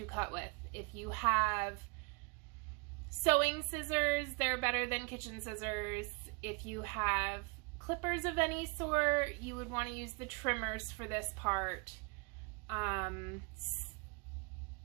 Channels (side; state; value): left; quieter; 32.0 dB